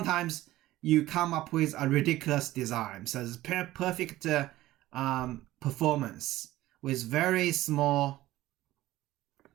you come up with a ridiculous design. So it's perfect performance with very small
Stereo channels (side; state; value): left; quieter; 16.1 dB